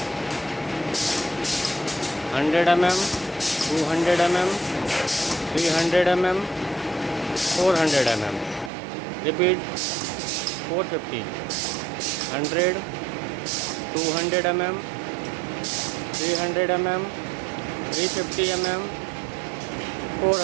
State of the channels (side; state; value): left; drops out; at 8.7 s